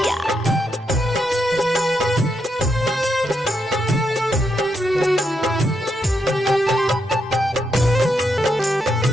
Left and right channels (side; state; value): both; normal; correlation 0.81